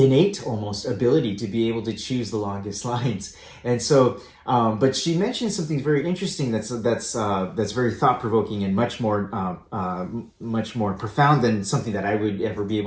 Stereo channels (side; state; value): both; identical; correlation 1.00